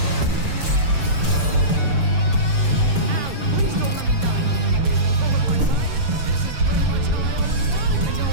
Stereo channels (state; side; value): late; left; 6.8 ms